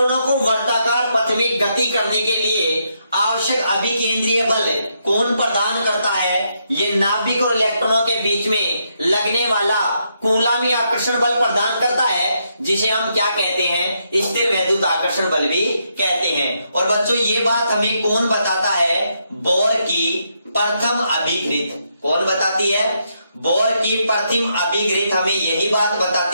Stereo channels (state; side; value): inverted; both; correlation -0.78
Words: को वर्ताकार पथ में गति करने के लिए आवश्यक अभिकेंद्रीय बल कौन प्रदान करता है, ये नाभिक और इलेक्ट्रॉनों के बीच में लगने वाला कूलामी आकर्षण बल प्रदान करता है, जिसे हम क्या कहते हैं, स्थिर वैद्युत आकर्षण बल भी कहते हैं। और बच्चों ये बात हमें कौन बताता है, बोर की प्रथम अभिकृत। कौन बताती है, बोर की प्रथम अभिकृत हमें यही बात